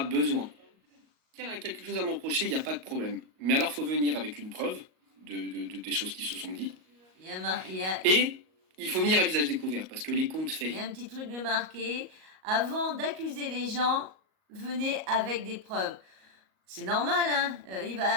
besoin. S'il y a quelque chose à me reprocher, il n'y a pas de problème. Mais alors, il faut venir avec une preuve des choses qui se sont dites. Et il faut venir à visage découvert, parce que les comptes faits. Il y a un petit truc de marqué. Avant d'accuser les gens, venez avec des preuves. C'est normal, hein.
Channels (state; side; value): late; left; 38 ms